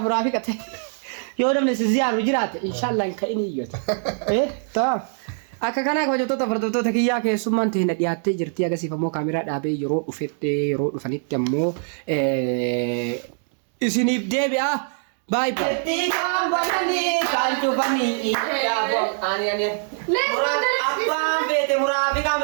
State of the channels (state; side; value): silent; left; 63 dB below the other